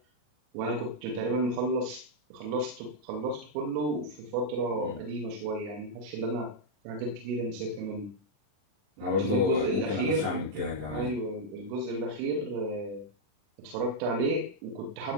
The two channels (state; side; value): late; left; 40 ms